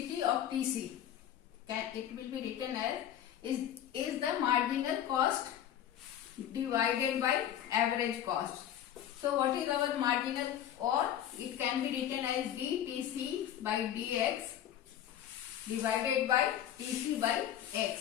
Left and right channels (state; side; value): quieter; right; 10.8 dB